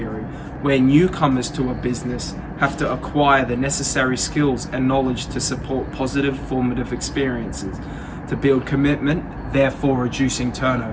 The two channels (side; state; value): both; identical; correlation 1.00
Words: where newcomers to a business have to acquire the necessary skills and knowledge to support positive formative experiences, to build commitment, therefore reducing